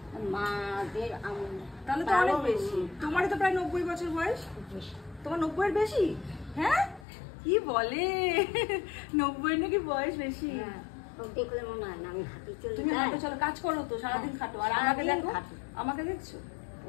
মাদের তাহলে তো অনেক বেশি। তোমারই তো প্রায় 90 বছর বয়স। তোমার 90 এর বেশি? হ্যাঁ, কি বলে, 90 এর নাকি বয়স বেশি? দেখলে মনে হয় না আমি হাঁটি চলি। তুমি হাঁটো, চলো, কাজ করো তো, সারাদিন খাটো। আর আমাকে দেখো, আমাকে দেখছো?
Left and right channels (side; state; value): right; drops out; at 7.1 s